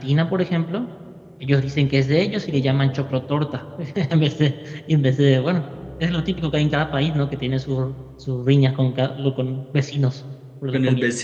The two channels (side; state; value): both; identical; correlation 1.00